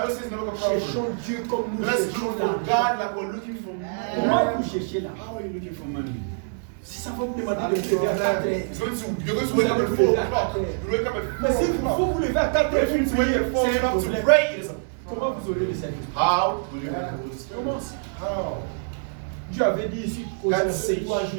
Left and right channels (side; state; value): left; silent; digital silence